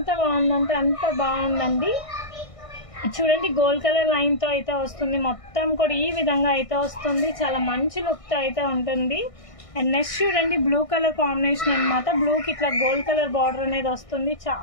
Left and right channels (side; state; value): right; late; 1.6 ms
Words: బాగుందంటే అంత బాగుందండి. చూడండి గోల్డ్ కలర్ లైన్తో అయితే వస్తుంది. మొత్తం కూడా ఈ విధంగా అయితే వస్తుంది. చాలా మంచి లుక్తో అయితే ఉంటుంది. అండ్ నెక్స్ట్ చూడండి బ్లూ కలర్ కాంబినేషన్ అనమాట. బ్లూకి ఇట్లా గోల్డ్ కలర్ బార్డర్ అనేది వస్తుంది.